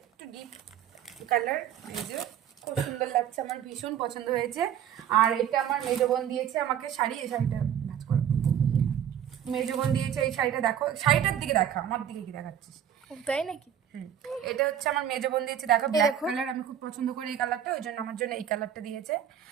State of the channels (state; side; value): quieter; left; 9.6 dB